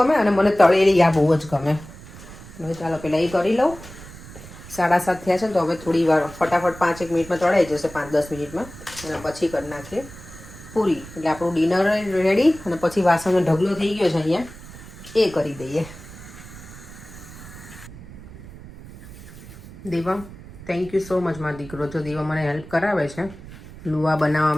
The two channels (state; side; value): noise; right; rumble, 16 dB below the sound